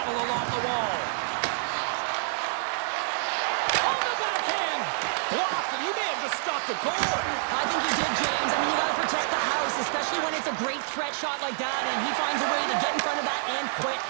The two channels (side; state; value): left; silent; digital silence